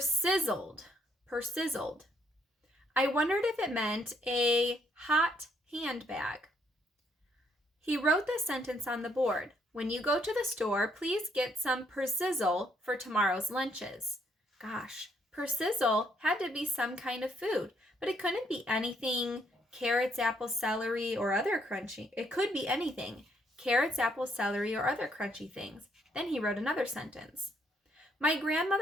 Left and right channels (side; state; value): both; normal; correlation 0.71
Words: Persizzled. I wondered if it meant a hot handbag. He wrote the sentence on the board. "When you go to the store, please get some persizzle for tomorrow's lunches." Gosh, persizzle had to be some kind of food, but it couldn't be anything carrots, apples, celery, or other crunchy. It could be anything. Carrots, apples, celery, or other crunchy things. Then he wrote another sentence. "My